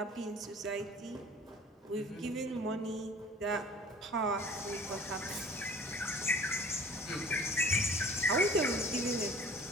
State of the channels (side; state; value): both; normal; correlation 0.47